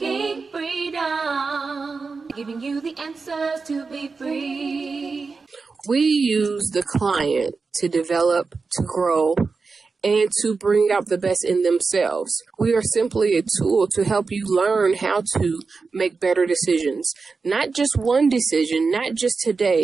freedom, giving you the answers to be free. We use the client to develop, to grow, and to bring out the best in themselves. We are simply a tool to help you learn how to make better decisions. Not just one decision, not just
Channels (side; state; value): left; quieter; 4.5 dB